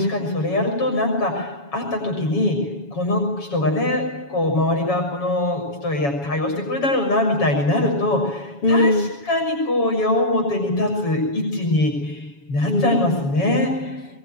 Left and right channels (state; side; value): late; right; 7.2 ms